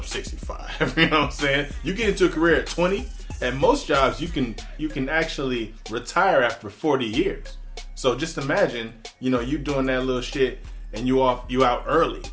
65. You know what I'm saying? You get into a career at 20. At most jobs, you can actually retire after 40 years. So just imagine, you know, you doing that little shit and you out early.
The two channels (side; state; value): both; identical; correlation 1.00